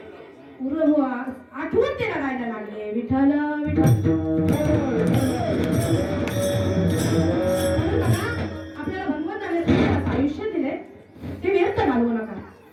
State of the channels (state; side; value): identical; both; correlation 1.00